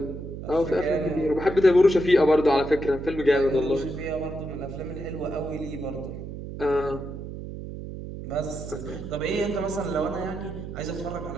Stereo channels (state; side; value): noise; right; hum, 9 dB below the sound